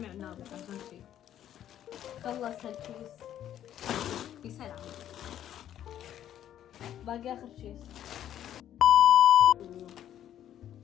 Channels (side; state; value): right; quieter; 11.1 dB